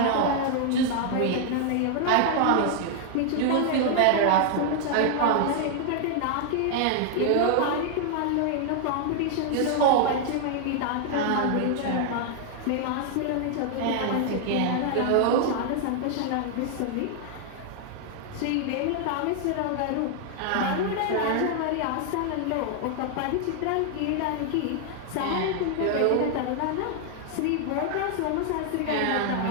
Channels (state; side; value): different; both; correlation 0.00